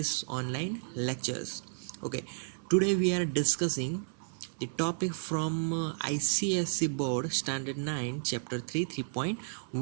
online lectures. Okay, today we are discussing the topic from ICSE board standard 9 chapter 3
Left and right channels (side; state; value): left; silent; 56 dB below the other